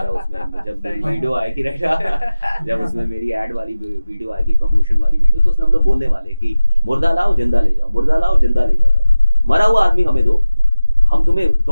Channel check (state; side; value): inverted; both; correlation -0.96